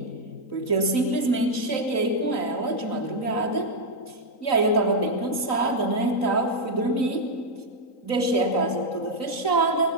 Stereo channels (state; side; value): late; right; 3.9 ms